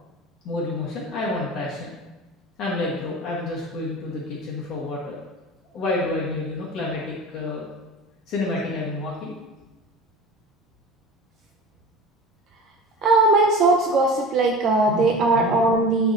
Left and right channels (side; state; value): both; normal; correlation 0.35